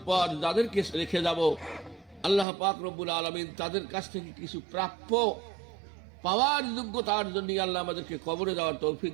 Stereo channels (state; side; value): drops out; left; at 2.5 s